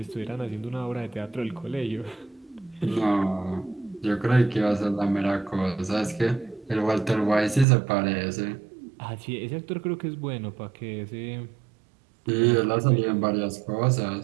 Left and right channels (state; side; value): drops out; left; at 7.7 s